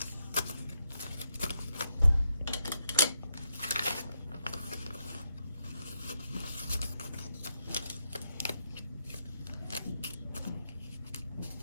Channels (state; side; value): inverted; both; correlation -0.81